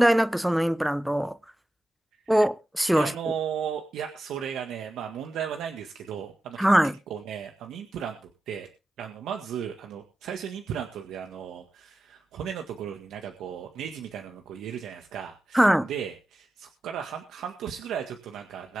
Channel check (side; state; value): both; normal; correlation 0.93